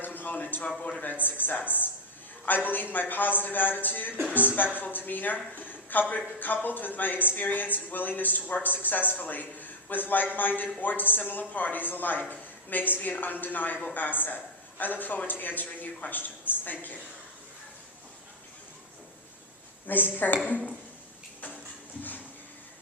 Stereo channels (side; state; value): both; normal; correlation 0.03